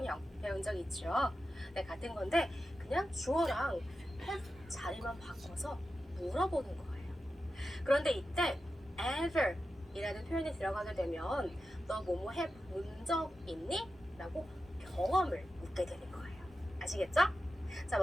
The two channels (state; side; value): normal; both; correlation 0.91